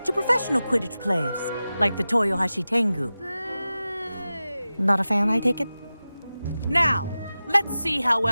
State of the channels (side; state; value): both; inverted; correlation -0.95